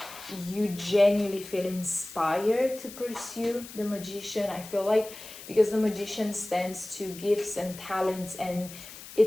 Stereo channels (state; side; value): noise; left; hiss, 15 dB below the sound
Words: you genuinely feel inspired to pursue. The Magician, I feel like, because the Magician stands to gifts and talents, and